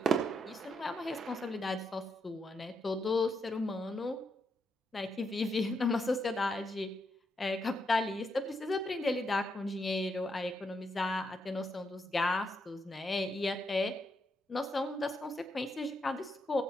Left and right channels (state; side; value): normal; both; correlation 0.80